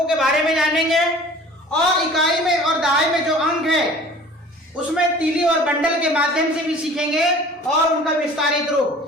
के बारे में जानेंगे, और इकाई में और दहाई में जो अंक है उसमें तीली और बंडल के माध्यम से भी सीखेंगे, और उनका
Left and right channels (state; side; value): normal; both; correlation 0.46